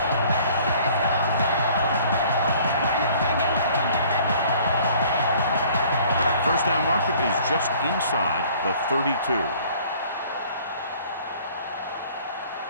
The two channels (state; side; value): inverted; both; correlation -0.54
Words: 3. First down marker is just inside the 32.